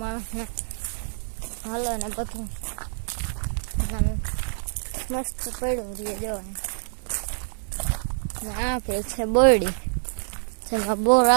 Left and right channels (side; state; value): left; silent; digital silence